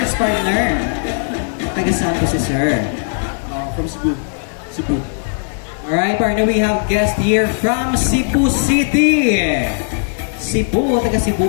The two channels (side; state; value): right; silent; digital silence